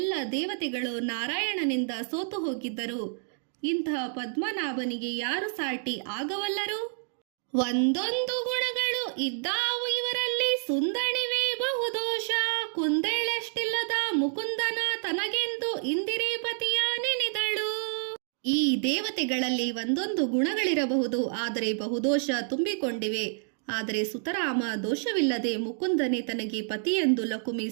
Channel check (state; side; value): silent; left; digital silence